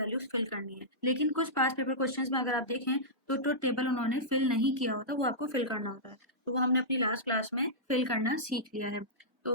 फिल करनी है। लेकिन कुछ पास पेपर क्वेश्चंस में अगर आप देखें तो ट्रुथ टेबल उन्होंने फिल नहीं किया होता, वो आपको फिल करना होता है। तो वो हमने अपनी लास्ट क्लास में फिल करना सीख लिया है। तो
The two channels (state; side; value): normal; both; correlation -0.14